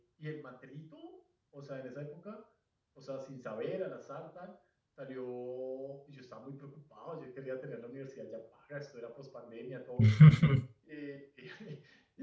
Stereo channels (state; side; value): identical; both; correlation 1.00